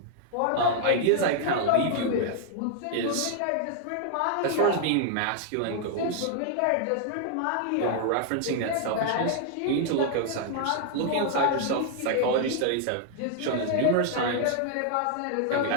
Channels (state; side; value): different; both; correlation 0.00